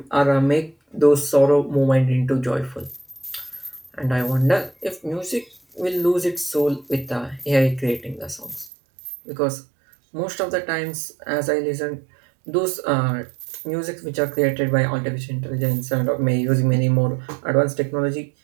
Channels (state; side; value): drops out; left; at 8.7 s